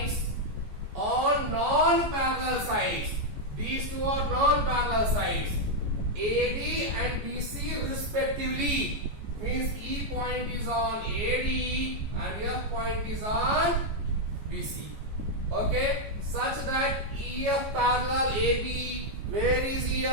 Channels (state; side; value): late; left; 14 ms